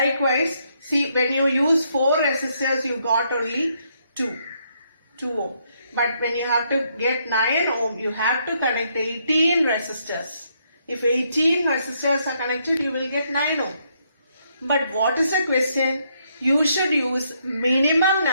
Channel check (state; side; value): inverted; both; correlation -0.74